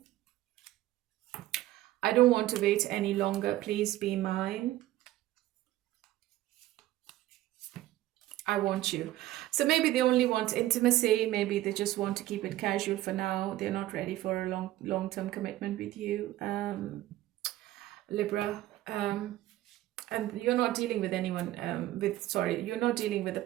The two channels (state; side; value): quieter; left; 15.3 dB